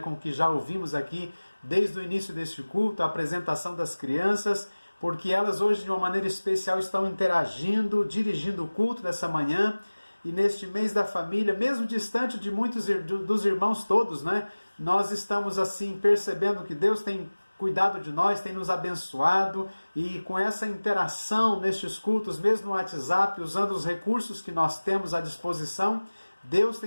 com o que já ouvimos aqui desde o início deste culto, a apresentação das crianças, porque elas hoje de uma maneira especial estão interagindo, dirigindo o culto dessa manhã. E neste mês da família, mesmo distante de muitos dos irmãos todos, nós estamos assim percebendo que Deus tem cuidado de nós, tem nos abençoado, e com essa interação nestes cultos, mesmo no WhatsApp, usando os recursos que nós temos à disposição, Deus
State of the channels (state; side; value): inverted; both; correlation -1.00